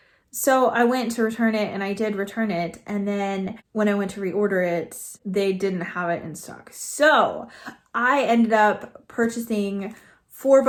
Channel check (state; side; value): identical; both; correlation 1.00